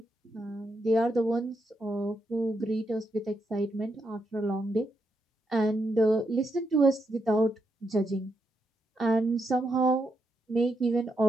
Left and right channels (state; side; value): normal; both; correlation 0.82